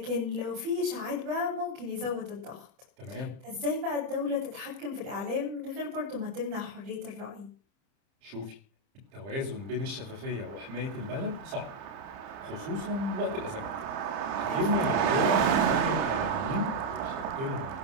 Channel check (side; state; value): left; late; 30 ms